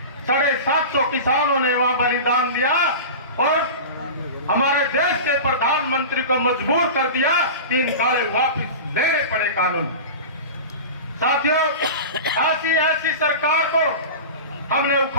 750 किसानों ने वहां बलिदान दिया और हमारे देश के प्रधानमंत्री को मजबूर कर दिया कि इन काले वापस लेने पड़े कानून। साथियों, ऐसी सरकार को हमने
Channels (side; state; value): both; inverted; correlation -0.30